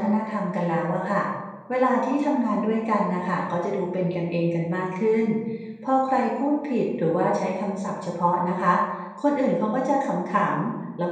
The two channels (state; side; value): identical; both; correlation 1.00